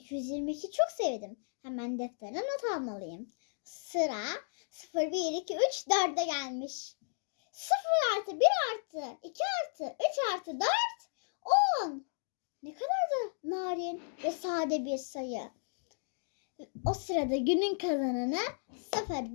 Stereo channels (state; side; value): silent; right; digital silence